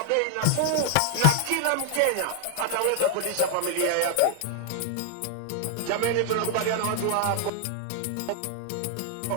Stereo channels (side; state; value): both; different; correlation 0.00